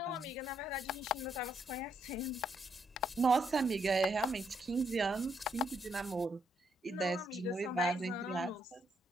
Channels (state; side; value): normal; both; correlation 0.75